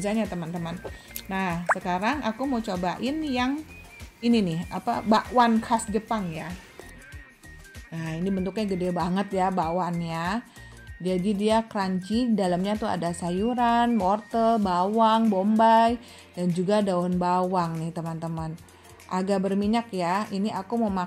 teman-teman. Nah, sekarang aku mau cobain yang ini nih, bakwan khas Jepang ya. Nah, ini bentuknya gede banget ya bakwannya. Jadi dia crunchy, dalamnya tuh ada sayuran, wortel, bawang, bombay, dan juga daun bawang nih teman-teman. Agak berminyak ya, ini aku mau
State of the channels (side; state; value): both; identical; correlation 1.00